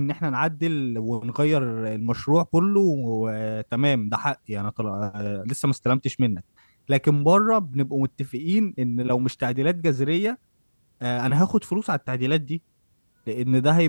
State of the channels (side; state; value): both; inverted; correlation -1.00